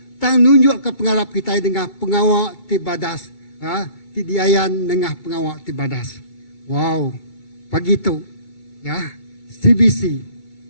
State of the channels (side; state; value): right; late; 2.2 ms